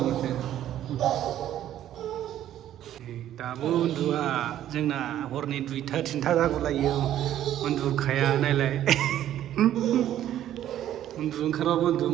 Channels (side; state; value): left; quieter; 11.9 dB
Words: दाबो उन्दुआ जोंना हरनि 2टा 3टा जागुलायो उन्दुखाया नायलाय उन्दुनो ओंखारबाबो उन्दुनो